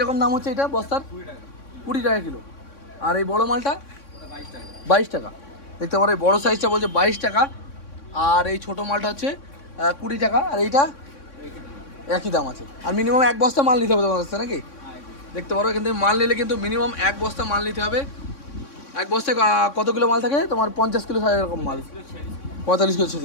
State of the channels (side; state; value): right; late; 3.6 ms